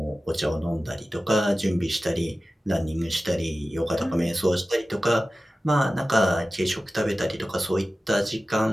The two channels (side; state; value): both; normal; correlation 0.95